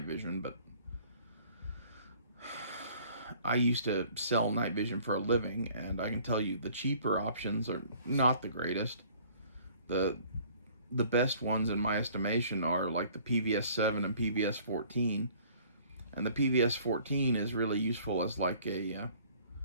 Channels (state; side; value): inverted; both; correlation -0.55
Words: vision, but I used to sell night vision for a living, and I can tell you the cheaper options are not the greatest. The best ones in my estimation are like the PVS-7 and PVS-14, and the PVS-14 is really useful as like a